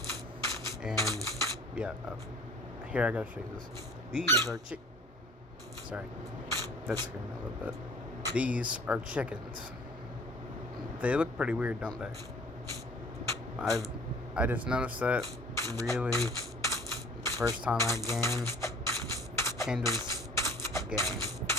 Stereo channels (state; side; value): normal; both; correlation 0.49